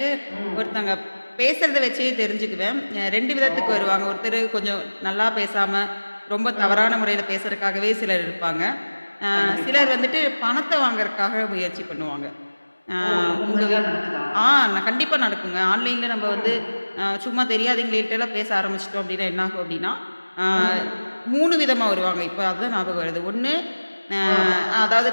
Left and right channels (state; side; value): inverted; both; correlation -1.00